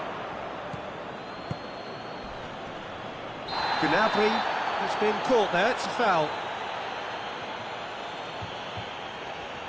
Gnabry has been caught there. It's a foul.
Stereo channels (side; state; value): both; identical; correlation 1.00